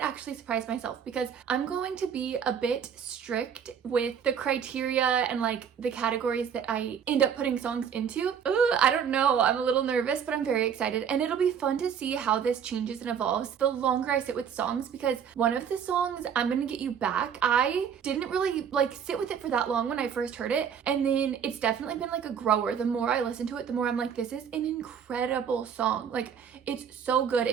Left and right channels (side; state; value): left; quieter; 7.8 dB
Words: actually surprise myself because I'm going to be a bit strict with the criteria and like the categories that I end up putting songs into. I don't know, I'm a little nervous, but I'm very excited, and it'll be fun to see how this changes and evolves the longer I sit with songs, because one of the songs, I'm Gonna Get You Back, I didn't really like sit with it for that long when I first heard it, and then it's definitely been like a grower. The more I listen to it, the more I'm like, this is an incredible song. Like, it's so good,